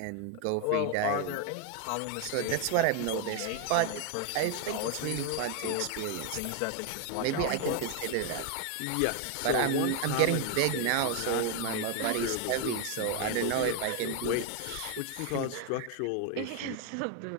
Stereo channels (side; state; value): both; different; correlation 0.01